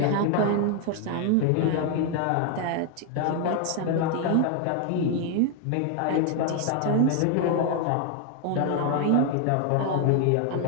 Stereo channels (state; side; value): different; both; correlation 0.00